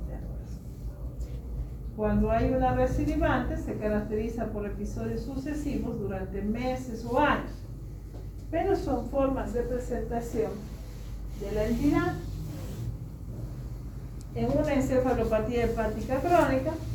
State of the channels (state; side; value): identical; both; correlation 1.00